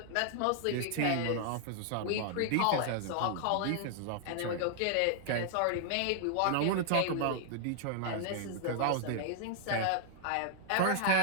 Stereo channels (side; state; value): both; different; correlation -0.01